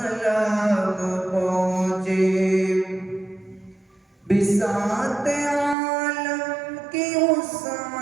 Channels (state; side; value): drops out; left; at 5.8 s